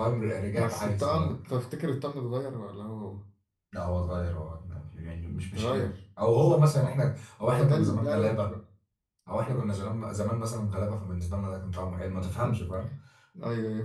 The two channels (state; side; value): identical; both; correlation 1.00